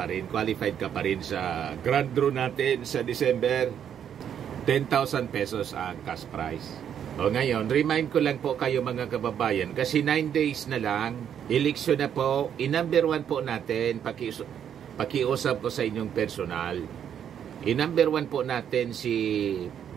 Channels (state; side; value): quieter; left; 9.0 dB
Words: rin, qualified ka pa rin sa grand draw natin sa December. 10,000 pesos ang cash prize. O ngayon, remind ko lang po kayo mga kababayan, kasi 9 days na lang, eleksyon na po, i-number 1 po natin, pakiusap ko sa inyong personal. I-number 1 po natin si